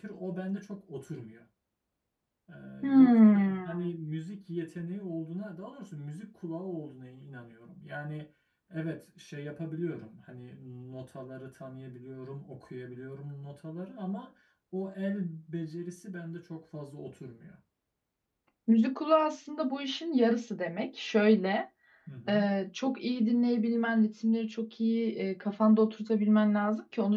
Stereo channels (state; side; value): identical; both; correlation 1.00